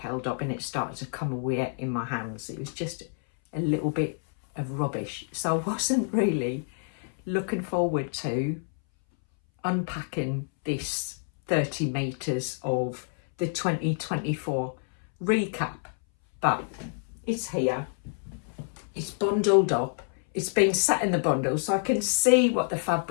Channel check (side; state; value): right; silent; 59 dB below the other